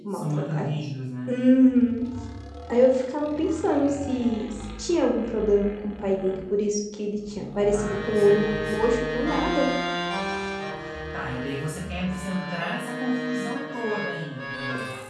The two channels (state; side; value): identical; both; correlation 1.00